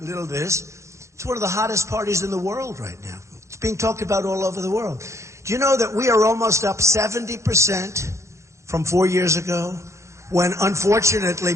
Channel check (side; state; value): left; late; 0.14 ms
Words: little this. It's one of the hottest parties in the world right now. It's being talked about all over the world. Do you know that we are almost up 70% from 4 years ago, when unfortunately